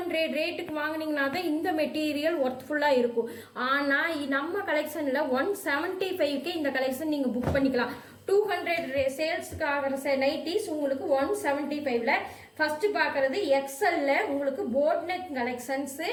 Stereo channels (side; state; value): both; identical; correlation 1.00